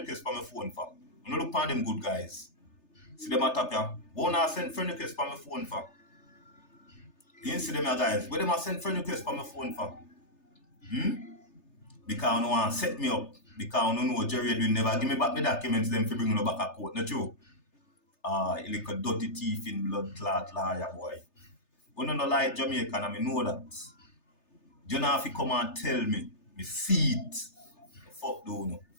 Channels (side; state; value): right; late; 3.3 ms